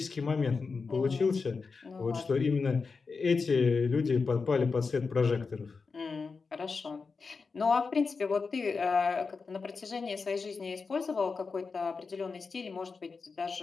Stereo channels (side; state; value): right; quieter; 4.7 dB